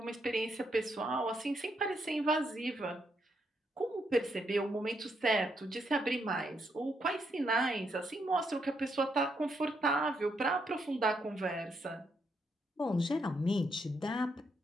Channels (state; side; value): normal; both; correlation 0.77